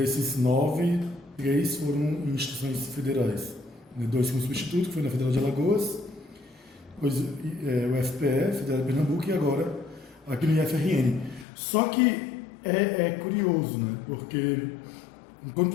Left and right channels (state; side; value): drops out; right; at 11.5 s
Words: 9, 3 foram em instituições federais. 2 com substituto, que foi na Federal de Alagoas, depois o FPE, Federal de Pernambuco, e agora aqui no IFRN. Só que é curioso, né? Porque enquanto